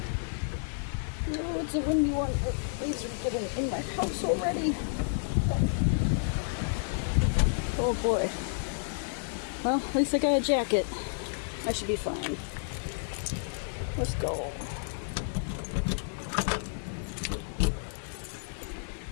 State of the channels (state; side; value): silent; right; digital silence